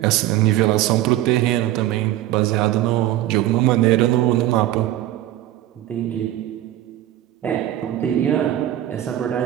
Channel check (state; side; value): quieter; left; 13.7 dB